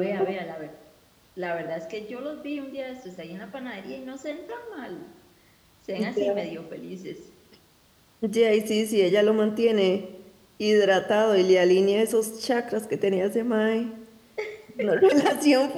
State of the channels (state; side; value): identical; both; correlation 1.00